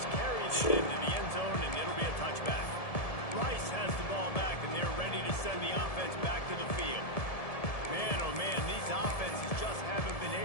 carried it into the end zone, and it'll be a touchback. Rice has the ball back, and they're ready to send the offense back to the field. Man, oh man, these offenses just haven't been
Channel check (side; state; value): right; late; 1.7 ms